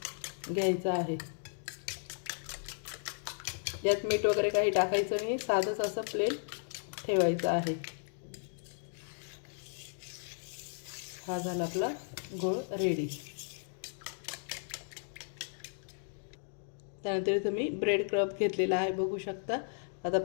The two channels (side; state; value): right; silent; digital silence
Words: घ्यायचं आहे. यात मीठ वगैरे काही टाकायचं नाही, साधंच असं प्लेन ठेवायचं आहे. हा झाला आपला घोळ रेडी. त्यानंतर इथं मी ब्रेड क्रब घेतलेला आहे बघू शकता. आता